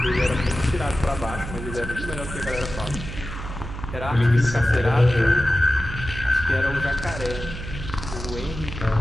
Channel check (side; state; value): right; noise; hum, 9 dB below the sound